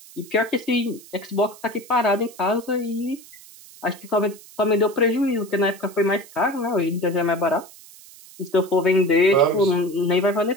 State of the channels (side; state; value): right; noise; hiss, 21 dB below the sound